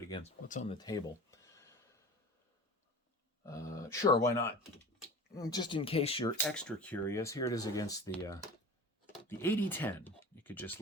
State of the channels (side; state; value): both; normal; correlation 0.37